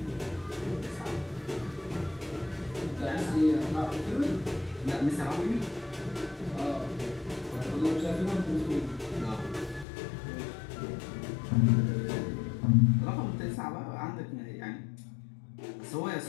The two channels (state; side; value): drops out; right; at 9.9 s